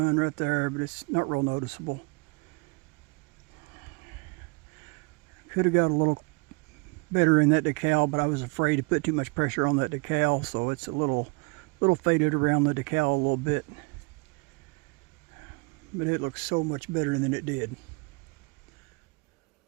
right there, but it's not real noticeable. Could have got a little better in that decal, but I was afraid to put too much pressure on that decal, so it's a little faded around the decal a little bit. But it looks so much better than it did.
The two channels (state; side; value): quieter; left; 30.1 dB